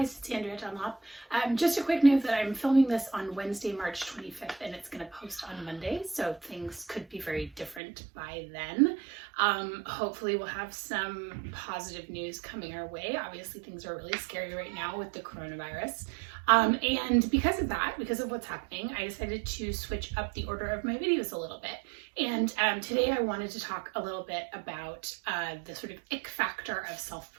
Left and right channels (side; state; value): left; drops out; at 7.8 s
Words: it's Andrea Dunlop. Just a quick note that I'm filming this on Wednesday, March 25th, and it's going to post on Monday, so things could be very different by then. Hopefully we'll have some positive news coming our way. Obviously things are really scary right now with the coronavirus. And because of that, because of what's happening, I decided to switch up the order of my videos a little bit. And today I wanted to talk a little bit about the sort of ick factor of